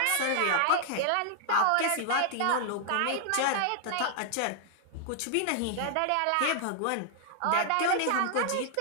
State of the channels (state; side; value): different; both; correlation -0.01